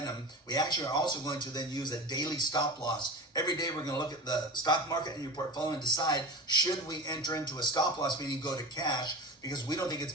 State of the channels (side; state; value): both; normal; correlation 0.30